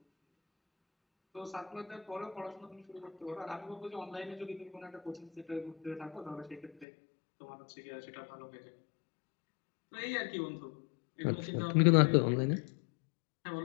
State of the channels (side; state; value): right; drops out; at 6.9 s